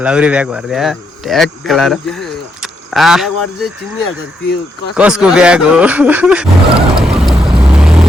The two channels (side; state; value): both; normal; correlation 0.78